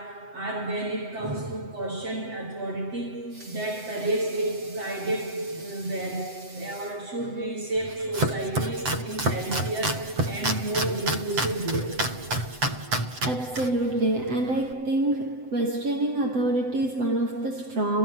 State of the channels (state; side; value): late; left; 7.9 ms